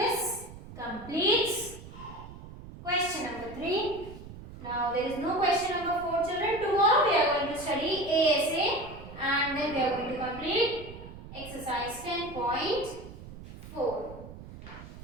completes question number 3. Now there is no question number 4, children. Tomorrow we are going to study ASA and then we are going to complete exercise 10.4.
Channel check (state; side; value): noise; right; rumble, 14 dB below the sound